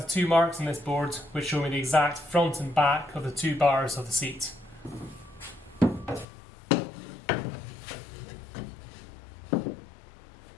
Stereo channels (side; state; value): right; drops out; at 6.2 s